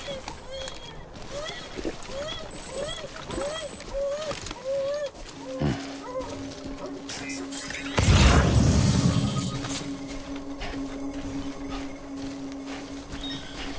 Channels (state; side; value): identical; both; correlation 1.00